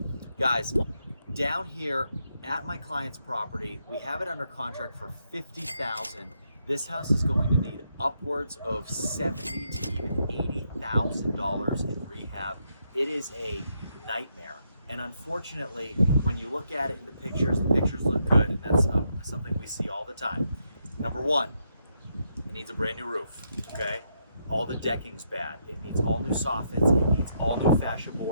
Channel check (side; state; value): both; inverted; correlation -0.78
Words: Guys, down here at my client's property, we have it under contract for $50,000. This house is going to need upwards of $70,000 to even $80,000 in rehab. It is a nightmare. And unfortunately, when you look at it in the pictures look good. And that's something we see all the time. Number one, it needs a brand new roof, okay? All the decking's bad. It needs all new soffits. It needs all new fascia